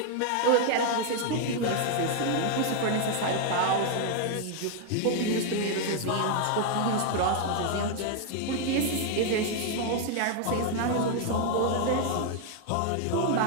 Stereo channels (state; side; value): different; both; correlation 0.00